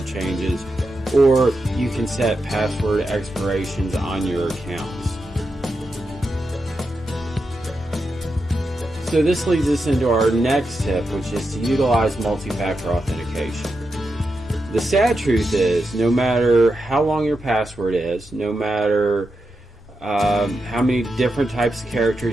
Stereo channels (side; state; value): both; normal; correlation 0.87